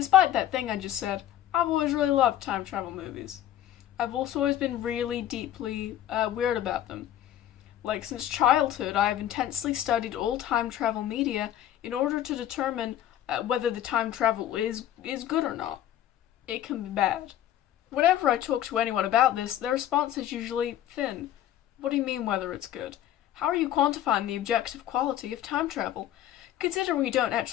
that thing I just said, I've always really loved time travel movies. I've also always been really deeply weird about them. Like, since childhood, I have intensely studied all time travel media in order to determine whether the time travel is good or not. It can be bad. Whenever I talk to anyone about this, their response is usually thin. What do you mean whether it's good? How are you quantifying the objective quality of time travel? Considering we don't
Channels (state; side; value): quieter; right; 12.0 dB